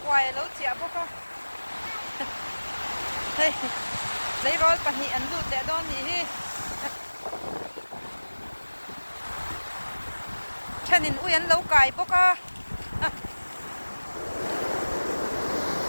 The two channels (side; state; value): both; inverted; correlation -1.00